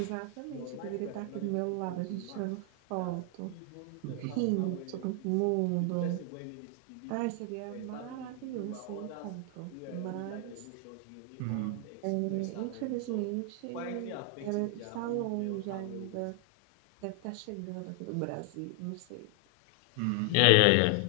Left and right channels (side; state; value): both; different; correlation 0.00